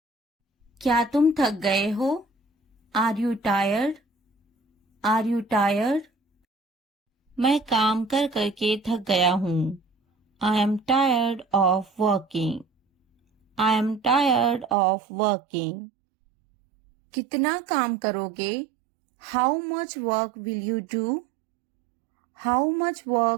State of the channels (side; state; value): left; drops out; at 14.8 s